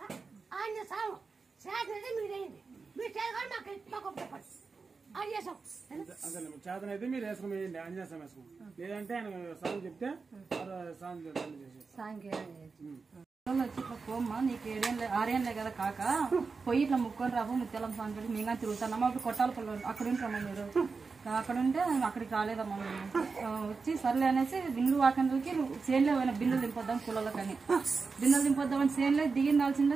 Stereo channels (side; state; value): left; quieter; 4.6 dB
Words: ఆయన సాగు చేతనైతే మీరేయండి. మీరు చేయగానే మాకు చెప్పండి అది చేసాం. అసలు చేతనైతే మీరు వేసుకుని వేయండి, ఆంజనేయ వేసుకుని. లేదంటే ఆయన సాగు చెప్తే వచ్చి ఇట్లా పోమ్మా, నీకు 6 కదా కాక పోయి ఇట్లా ముక్కొని రాబో ముత్యాలం సాంగ్ పెట్టి మేము తిరుగుతున్నామా. అప్పుడు కొట్టాల పళ్ళు అక్కడ ఉంటామా మీరు. అక్కడ ఉంటే అక్కడికి రాలేదమ్మా మేము. వచ్చి సర్లే అనేసి బిందులు వాకందులకి చేనులో పోయిన బిందులు దింపొద్దాం కులలకని. బిందులు దింపొద్దామని చేనులో